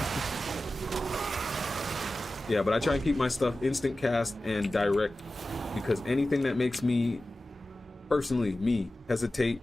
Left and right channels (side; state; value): both; normal; correlation 0.95